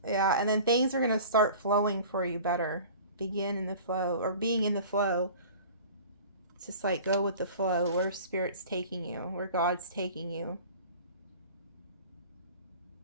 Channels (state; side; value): inverted; both; correlation -0.42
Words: yeah. And then things are going to start flowing for you better. Begin in the flow, or being in the flow. It's just like go with the flow, where Spirit's taking you, where God's taking you.